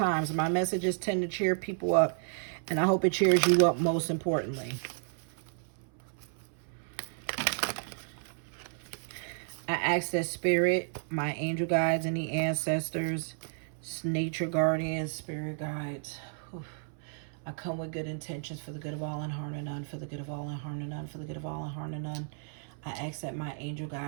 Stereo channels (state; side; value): silent; left; 56 dB below the other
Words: My messages tend to cheer people up, and I hope it cheers you up most importantly. I ask that spirit, my angel guides and the ancestors, nature guardians, spirit guides, I come with good intentions for the good of all and harm to none, for the good of all and harm to none, for the good of all and harm to none. I ask that my angel